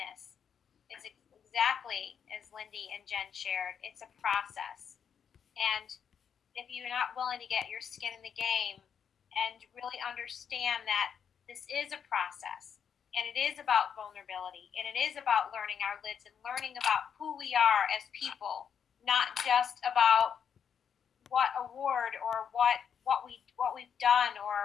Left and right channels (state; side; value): quieter; right; 7.6 dB